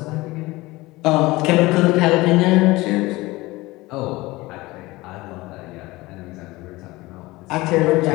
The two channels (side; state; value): right; quieter; 20.5 dB